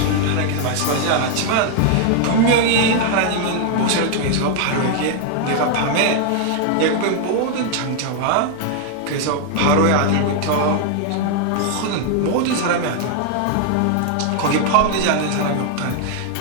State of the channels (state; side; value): different; both; correlation 0.00